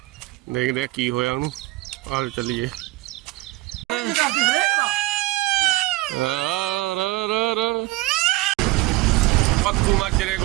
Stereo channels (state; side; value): quieter; left; 19.3 dB